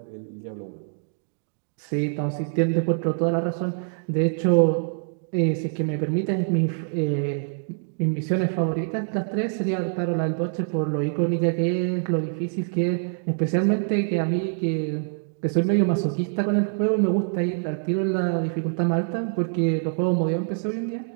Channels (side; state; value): left; silent; digital silence